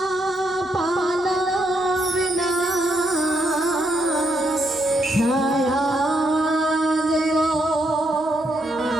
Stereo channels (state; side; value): normal; both; correlation 0.77